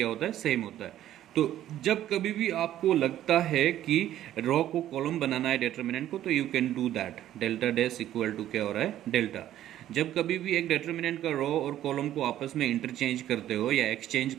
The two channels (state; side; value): quieter; left; 12.4 dB